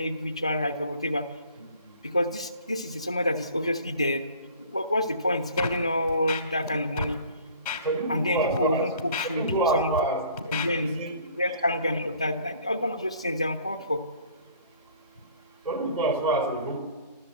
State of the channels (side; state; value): both; inverted; correlation -0.52